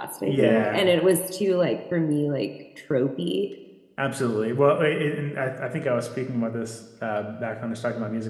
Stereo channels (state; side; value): identical; both; correlation 1.00